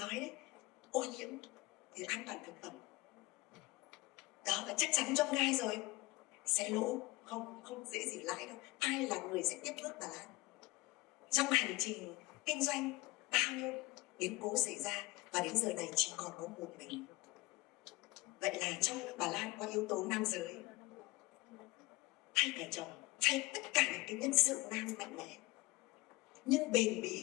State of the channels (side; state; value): right; quieter; 21.8 dB